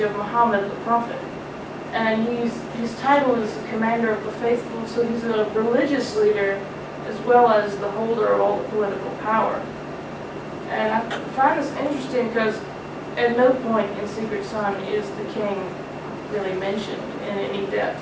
of Muhammad the Prophet. And his title is Commander of the Faithful, so he's a religious leader as well as the holder of all the political power. And I find this interesting because at no point in Secret Son is the king really mentioned in any depth.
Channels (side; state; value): both; identical; correlation 1.00